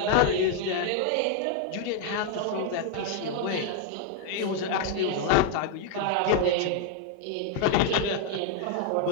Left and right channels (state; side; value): different; both; correlation 0.01